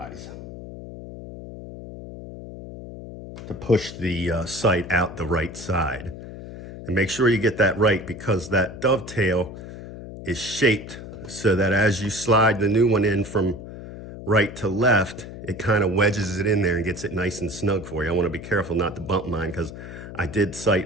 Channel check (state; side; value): noise; left; hum, 12 dB below the sound